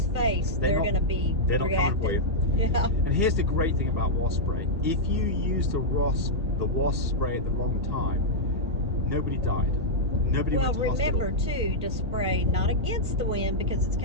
face, they're not coming for you. Yeah. And here's the great thing about wasp spray: if you use the wasp spray at the wrong time, nobody died. Nobody went to hospital. Remember too to spray not against the wind because it's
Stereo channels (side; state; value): both; normal; correlation -0.07